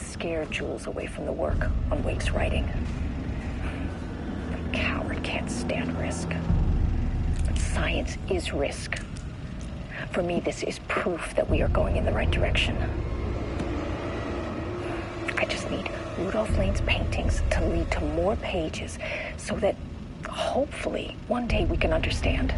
scared Jules away from the work on Wake's writing. The coward can't stand risk. But science is risk. For me, this is proof that we are going in the right direction. I just need Rudolph Lane's paintings to lead to more pages so that hopefully one day we can understand.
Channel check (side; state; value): both; identical; correlation 1.00